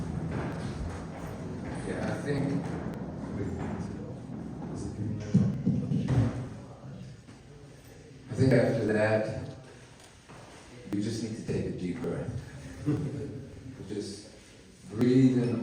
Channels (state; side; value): identical; both; correlation 1.00